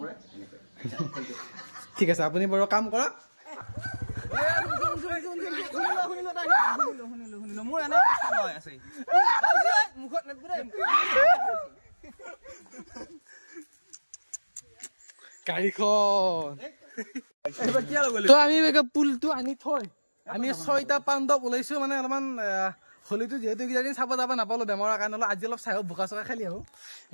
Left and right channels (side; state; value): both; inverted; correlation -1.00